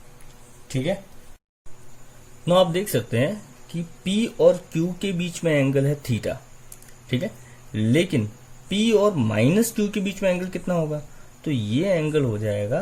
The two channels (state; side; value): identical; both; correlation 1.00